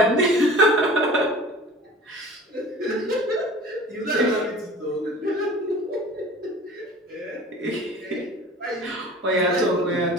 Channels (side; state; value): both; normal; correlation 0.42